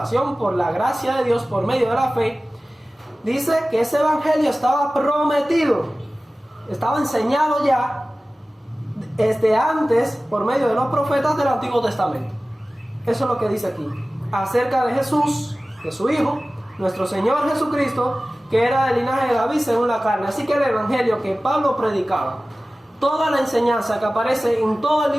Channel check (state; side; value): normal; both; correlation 0.97